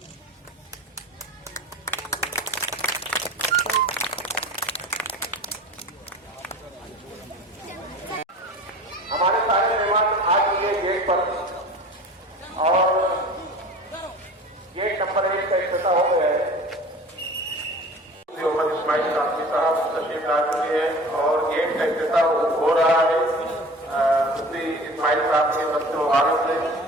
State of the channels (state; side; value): normal; both; correlation 0.40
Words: हमारे सारे मेहमान आ चुके गेट पर और गेट नंबर 1 का इफ्तिताह हो गया है। मोहम्मद इस्माइल कासमी साहब तशरीफ ला चुके हैं और गेट का इफ्तिताह हो रहा है। मुफ्ती इस्माइल साहब के बच्चे मुबारक से